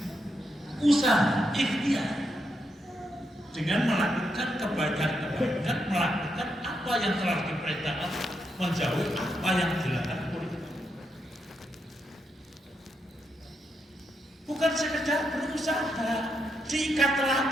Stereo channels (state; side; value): normal; both; correlation 0.81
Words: usaha ikhtiar dengan melakukan kebaikan-kebaikan, melakukan apa yang telah diperintahkan, menjauhi apa yang dilarang oleh Allah. Bukan sekedar berusaha, diikat